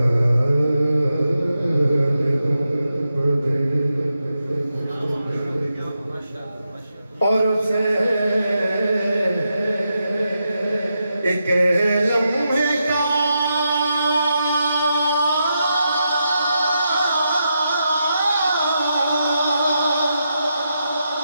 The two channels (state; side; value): inverted; both; correlation -0.85